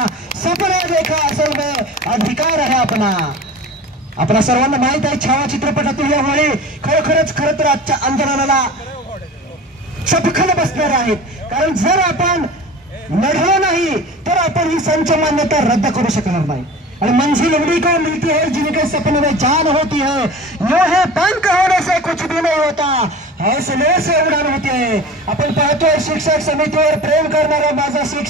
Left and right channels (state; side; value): normal; both; correlation 0.36